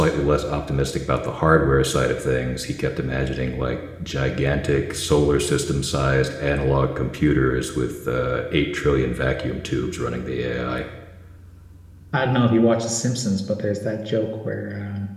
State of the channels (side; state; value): both; identical; correlation 1.00